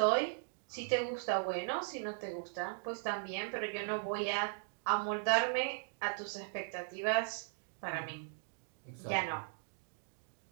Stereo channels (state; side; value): silent; left; digital silence